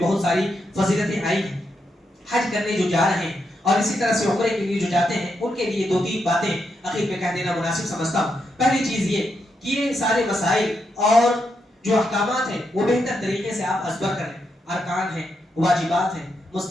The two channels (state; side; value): normal; both; correlation 0.82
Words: بہت ساری فضیلتیں آئی ہیں. حج کرنے جو جا رہے ہیں اور اسی طرح سے عمرے کے لیے جو جاتے ہیں، ان کے لیے 2-3 باتیں اخیر میں کہہ دینا مناسب سمجھتا ہوں. پہلی چیز یہ کہ یہ سارے مسائل اور جو احکامات ہیں وہ بہتر طریقے سے آپ ازبر کریں. ارکان ہیں، واجبات ہیں،